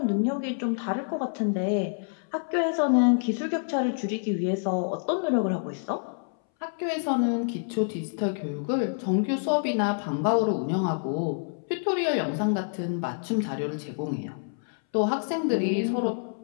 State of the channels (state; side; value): silent; right; 60 dB below the other